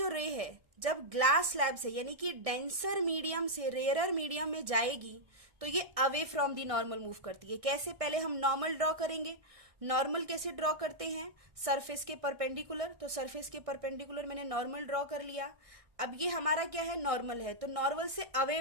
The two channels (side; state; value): left; late; 1.6 ms